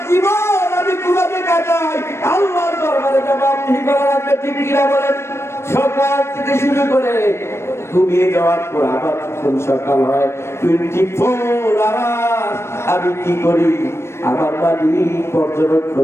জীবন আমি কিভাবে কাটাই আল্লাহর দরবারে জবাবদিহি করা লাগবে। ঠিক কিনা বলেন? সকাল থেকে শুরু করে ঘুমিয়ে যাওয়ার পর আবার যখন সকাল হয়, 24 আওয়ার আমি কি করি আমার মালিক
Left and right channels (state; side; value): late; right; 0.13 ms